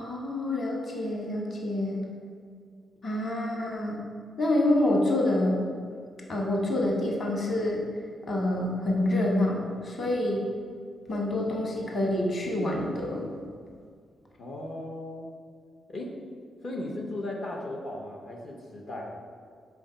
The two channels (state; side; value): normal; both; correlation 0.79